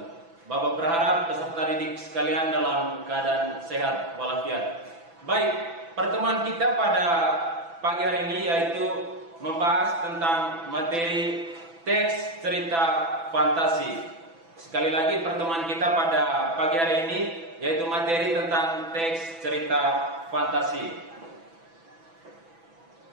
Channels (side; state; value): left; late; 6.0 ms